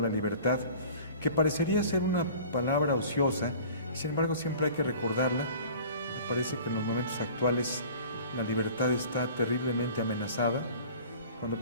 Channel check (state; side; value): inverted; both; correlation -0.45